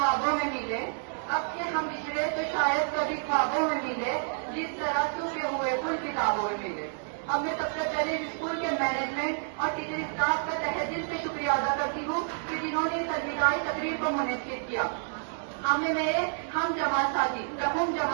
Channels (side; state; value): left; silent; digital silence